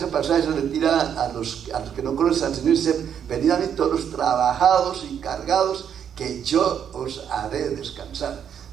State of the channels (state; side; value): quieter; left; 8.5 dB